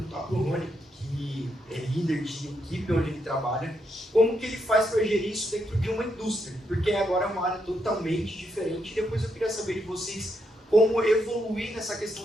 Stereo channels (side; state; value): both; normal; correlation 0.80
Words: para o Rony, que é líder de equipe onde ele trabalha, como que ele faz para gerir isso dentro de uma indústria? Porque agora é uma área totalmente diferente. E depois eu queria saber de vocês como evoluir nessa